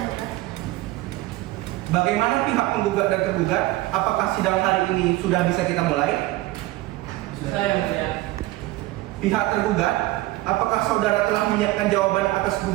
mulia. Bagaimana pihak penggugat dan tergugat? Apakah sidang hari ini sudah bisa kita mulai? Sudah yang mulia. Pihak tergugat, apakah saudara telah menyiapkan jawaban atas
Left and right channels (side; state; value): left; quieter; 18.1 dB